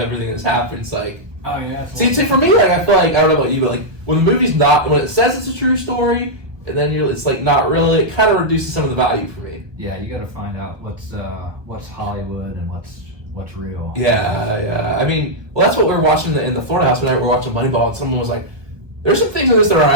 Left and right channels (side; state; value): left; late; 1.2 ms